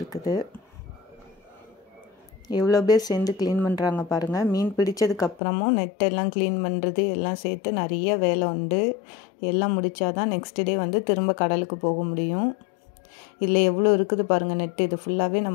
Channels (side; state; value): right; drops out; at 5.4 s